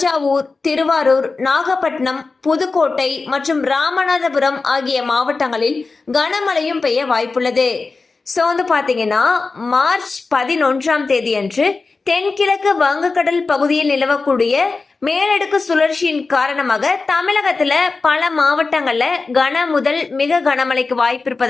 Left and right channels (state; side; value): quieter; right; 4.0 dB